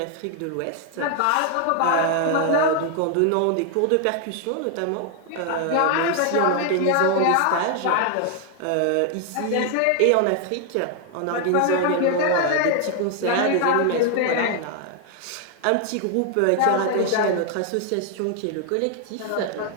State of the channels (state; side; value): different; both; correlation 0.00